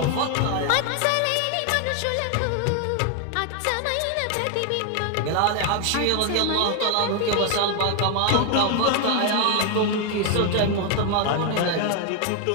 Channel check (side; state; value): both; different; correlation 0.00